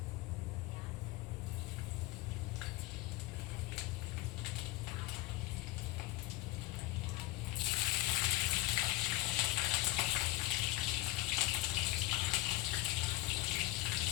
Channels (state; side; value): quieter; right; 18.7 dB